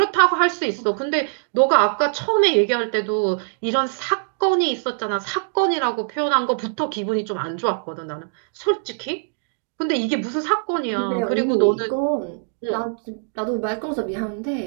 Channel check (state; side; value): silent; left; digital silence